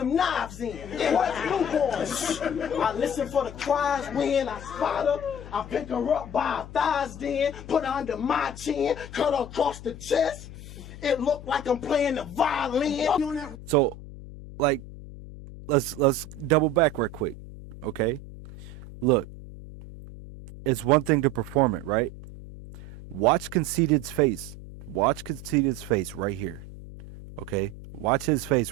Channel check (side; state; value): left; noise; hum, 14 dB below the sound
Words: knives in. What's newborns? I listen for the cries when I spot her. I pick her up by her thighs then, put her under my chin, cut her across the chest. It looked like I'm playing the violin. So, like, let's double back real quick, okay? Look, it's one thing to perform it, right? Watch Conceited's face. Watch Conceited's face right here, okay? Watch his